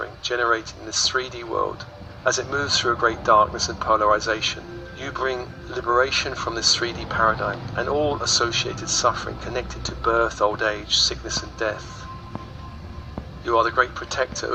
generated in this 3D world. As it moves through a great darkness and polarization, you bring liberation from this 3D paradigm and all associated suffering connected to birth, old age, sickness and death. You are the great protector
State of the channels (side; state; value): both; identical; correlation 1.00